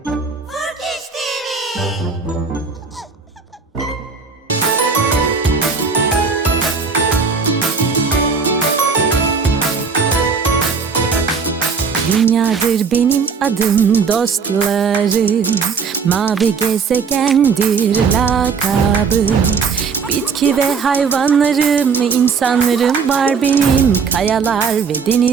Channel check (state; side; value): quieter; left; 5.5 dB